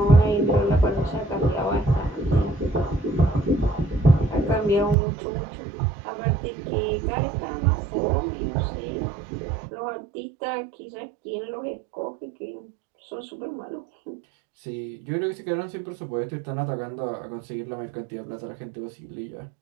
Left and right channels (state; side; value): drops out; left; at 5.0 s